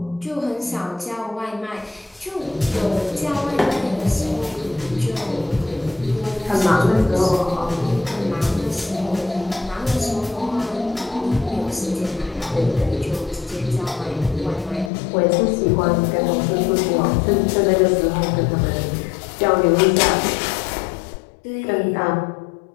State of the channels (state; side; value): drops out; right; at 14.9 s